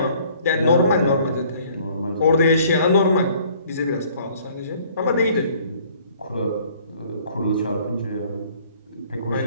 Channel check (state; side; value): inverted; both; correlation -0.57